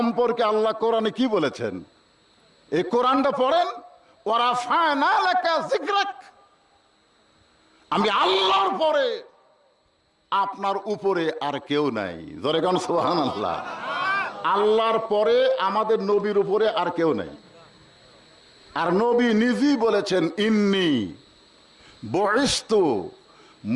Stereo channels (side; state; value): both; identical; correlation 1.00